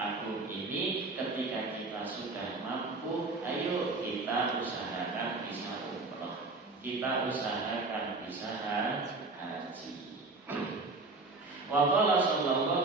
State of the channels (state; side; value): quieter; left; 3.6 dB